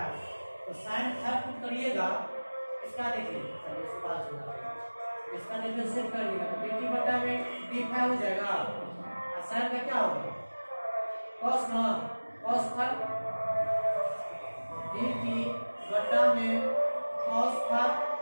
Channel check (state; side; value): inverted; both; correlation -1.00